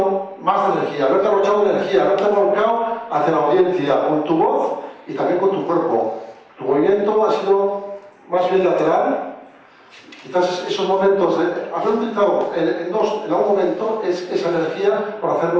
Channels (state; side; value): identical; both; correlation 1.00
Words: más de energía, haberte arrochado de energía, haberte volcado hacia la audiencia con tu voz y también con tu cuerpo. Tu movimiento ha sido más bien lateral. Quizás esos momentos de haber utilizado en algún momento esa energía para